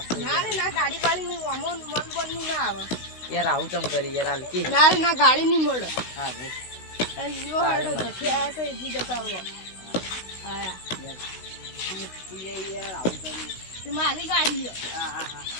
ના રે ના ગાડી પાડી નું અમોન મન બનનું ના આવે યાર આવું તમ કરી યાર હાલકી. ના રે ના ગાડી નહીં મળે. હા ભાઈ અయ్యో હેડો નથી આયા તો ઈજી જતા રહો. આયા તું યાર આવું કરી તે મારી ગાડી હા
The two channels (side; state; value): right; late; 16 ms